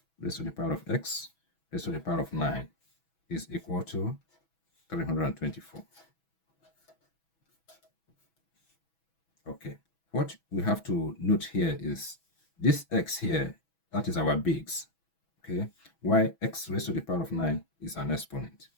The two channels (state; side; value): late; right; 6.1 ms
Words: raised to the power of x raised to the power of 9 is equal to 324. Okay, what we have to note here is this x here, that is our base. Okay, why x raised to the power of 9 is an exponent.